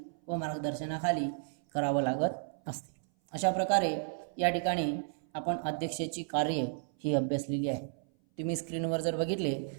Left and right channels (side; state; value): left; silent; 56 dB below the other